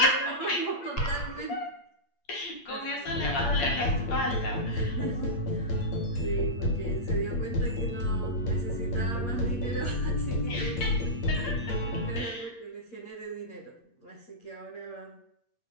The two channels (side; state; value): right; late; 8.6 ms